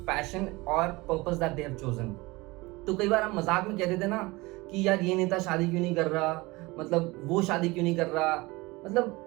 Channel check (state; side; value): quieter; left; 22.5 dB